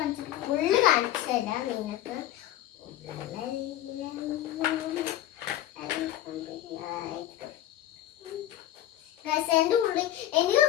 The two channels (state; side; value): quieter; right; 12.9 dB